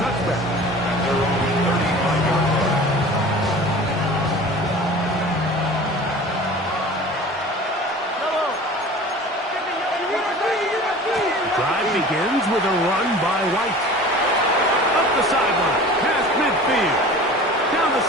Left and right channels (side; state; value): both; normal; correlation 0.40